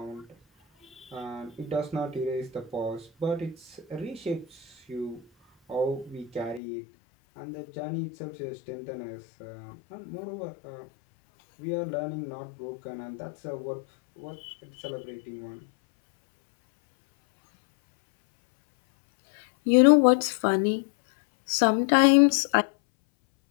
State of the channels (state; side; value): drops out; right; at 6.6 s